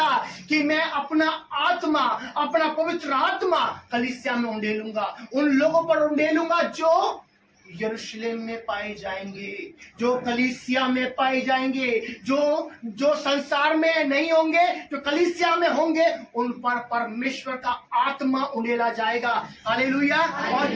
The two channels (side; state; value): both; identical; correlation 1.00